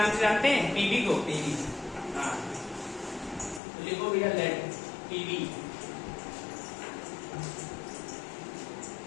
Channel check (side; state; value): right; drops out; at 3.6 s